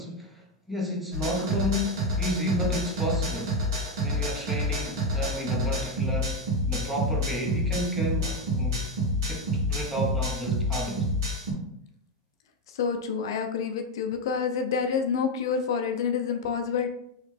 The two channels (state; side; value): normal; both; correlation 0.08